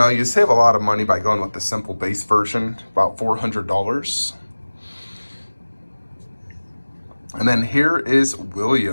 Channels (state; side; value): inverted; both; correlation -1.00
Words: save a lot of money by going with the simple base version, about $400. And then here is